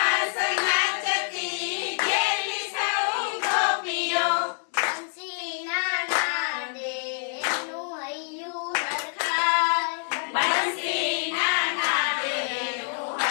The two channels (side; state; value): right; silent; 56 dB below the other